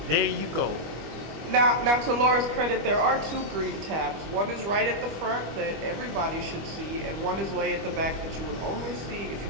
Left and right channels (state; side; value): late; left; 25 ms